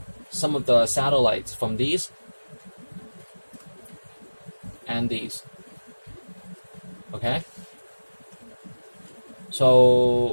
some of the satellites from these and these, okay?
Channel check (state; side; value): inverted; both; correlation -1.00